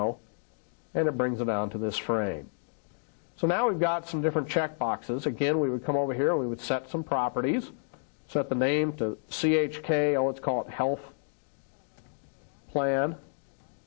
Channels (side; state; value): right; silent; digital silence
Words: and it brings it down to this frame. So now we've got some different check boxes. Again, we would come over here and we would set some properties. Set the name to CHK, let's call it Health Plan,